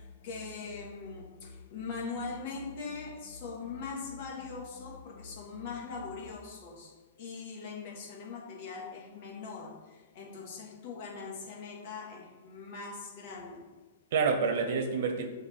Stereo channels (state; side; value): inverted; both; correlation -0.35